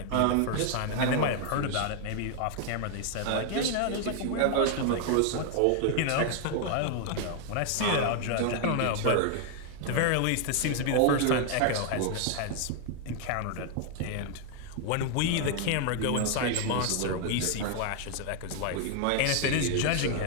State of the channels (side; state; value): both; different; correlation 0.00